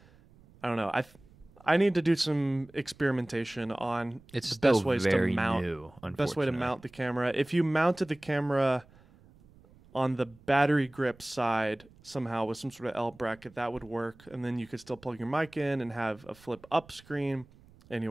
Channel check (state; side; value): noise; right; rumble, 26 dB below the sound